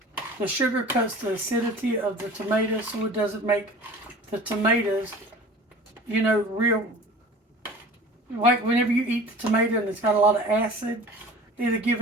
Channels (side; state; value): both; normal; correlation 0.42